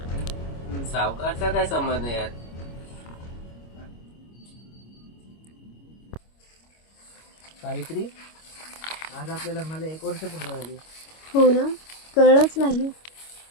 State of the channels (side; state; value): right; late; 25 ms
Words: सावकारचा काय संबंध आहे यात? सावित्री, आज आपल्या लग्नाला 1 वर्ष पूर्ण झाली. हो ना, कळलंच नाही.